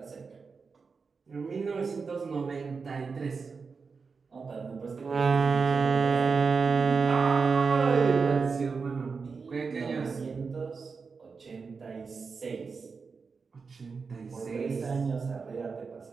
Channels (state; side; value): quieter; left; 5.0 dB